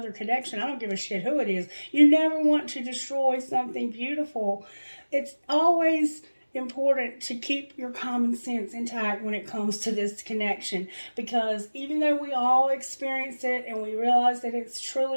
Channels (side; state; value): both; inverted; correlation -1.00